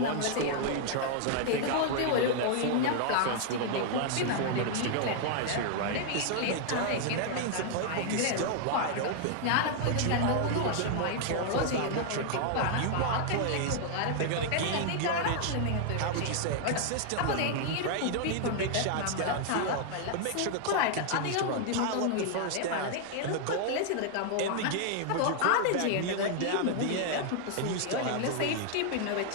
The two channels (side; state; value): both; different; correlation 0.00